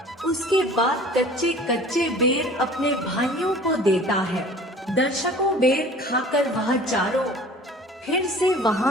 उसके बाद कच्चे कच्चे बेर अपने भाइयों को देता है। दर्शकों, बेर खाकर वह चारों फिर से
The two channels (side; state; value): both; normal; correlation 0.45